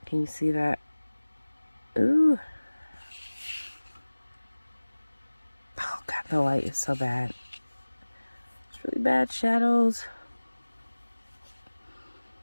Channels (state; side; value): inverted; both; correlation -1.00